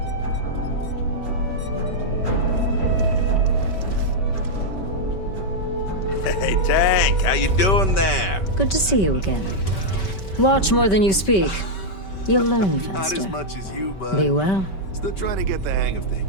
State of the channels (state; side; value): late; right; 5.2 ms